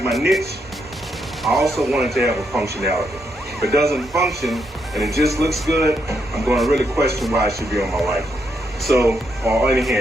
my niche. I also want it to have a functionality. If it doesn't function and it just looks good, I'm going to really question why it should be on my rifle. So, or any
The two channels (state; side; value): normal; both; correlation 0.79